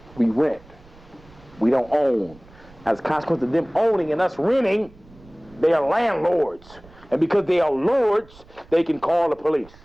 We rent. We don't own. As a consequence of them owning and us renting, they are landlords. And because they are lords, they can call the police.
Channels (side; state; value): right; noise; rumble, 24 dB below the sound